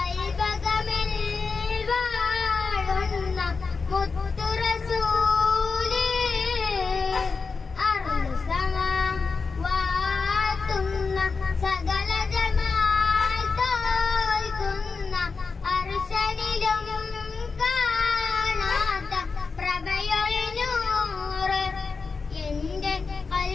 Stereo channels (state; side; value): quieter; right; 4.7 dB